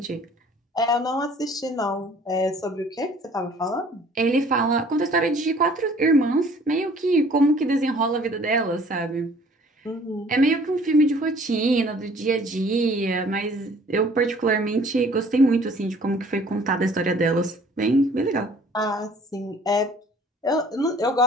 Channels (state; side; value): normal; both; correlation 0.54